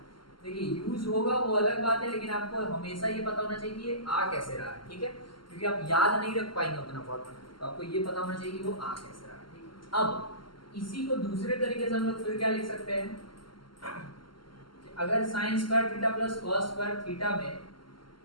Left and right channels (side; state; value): right; late; 0.72 ms